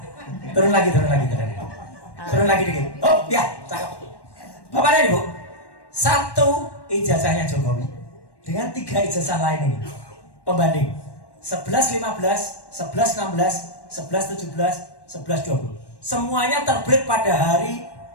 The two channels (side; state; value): right; late; 1.1 ms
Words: turun lagi. Turun lagi dikit. Oh, ya, cakep. Bapak dan Ibu, satu ijazahnya Jokowi dengan 3 ijazah lain ini. Pembanding 1115, 1116, 1117, 1120. Semuanya terbit pada hari